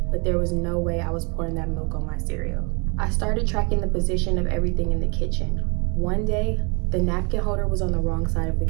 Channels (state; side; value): quieter; left; 31.5 dB